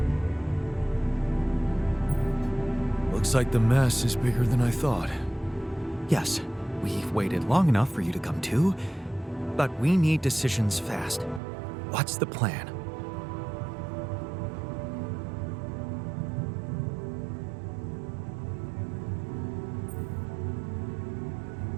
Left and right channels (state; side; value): drops out; left; at 11.4 s